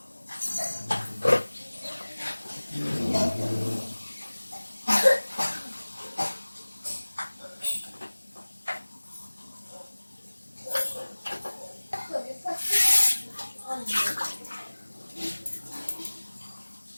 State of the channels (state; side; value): inverted; both; correlation -1.00